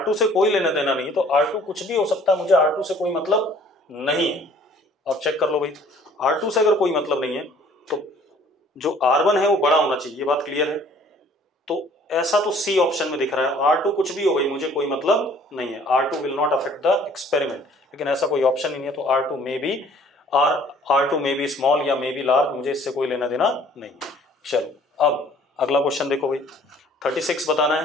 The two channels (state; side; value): normal; both; correlation 0.55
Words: से कोई लेना देना नहीं है, तो R2 कुछ भी हो सकता है, मुझे R2 से कोई मतलब नहीं है। आप चेक कर लो भाई, R2 से अगर कोई मतलब नहीं है तो जो R1 है वो बड़ा होना चाहिए, ये बात क्लियर है। तो ऐसा तो C ऑप्शन में दिख रहा है, R2 कुछ भी हो भाई मुझे कोई मतलब नहीं है, R2 will not affect the experiment, लेकिन ऐसा कोई ऑप्शन ही नहीं है, तो R2 मे बी स्मॉल या मे बी लार्ज, मुझे इससे कोई लेना देना नहीं। चलो अब अगला क्वेश्चन देखो भाई, 36 बताना